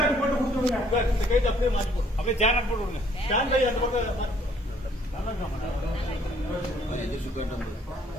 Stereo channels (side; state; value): both; normal; correlation 0.62